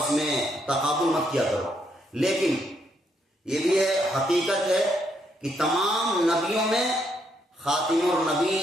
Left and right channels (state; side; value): normal; both; correlation 0.75